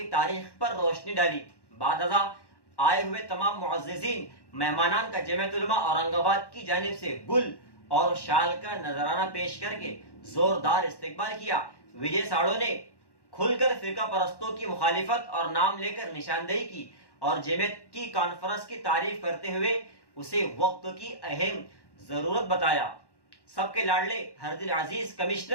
تاریخ پر روشنی ڈالی۔ بعد ازاں آئے ہوئے تمام معززین مہمانان کا جمعیت علماء اورنگ آباد کی جانب سے گل اور شال کا نذرانہ پیش کر کے زوردار استقبال کیا۔ وجے ساڑو نے کھل کر فرقہ پرستوں کی مخالفت اور نام لے کر نشاندہی کی اور جمعیت کی کانفرنس کی تعریف کرتے ہوئے اسے وقت کی اہم ضرورت بتایا۔ سب کے لاڈلے ہر دل عزیز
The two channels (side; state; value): right; late; 1.1 ms